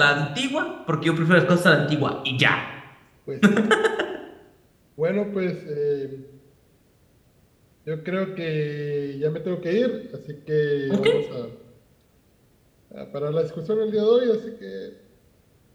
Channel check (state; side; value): identical; both; correlation 1.00